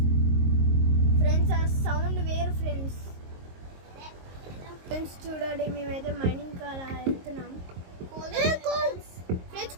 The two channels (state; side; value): late; left; 22 ms